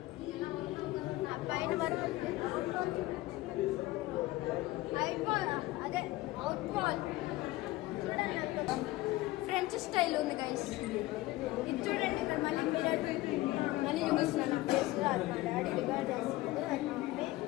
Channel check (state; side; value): quieter; right; 18.2 dB